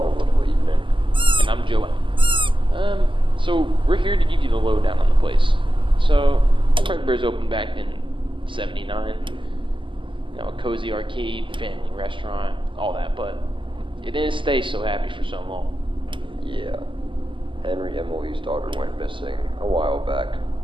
little evening. And I'm Joanne. So we're here to give you the lowdown on the place. So, Fredbear's opened back in '79. You know, a cozy arcade, family restaurant, all that, but it didn't stay so happy for so long. Yeah. Henry Emily's daughter went missing a while back.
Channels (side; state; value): left; late; 0.25 ms